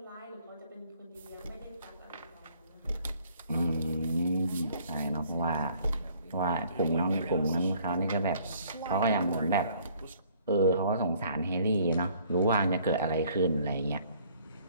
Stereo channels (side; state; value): both; inverted; correlation -0.59